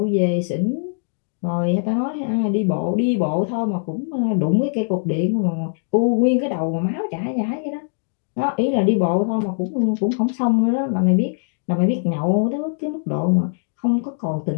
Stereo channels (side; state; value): right; silent; digital silence